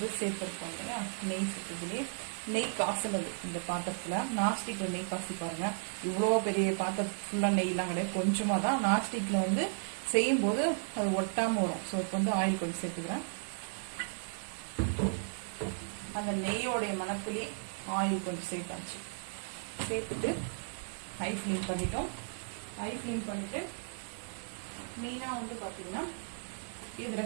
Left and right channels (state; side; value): silent; left; digital silence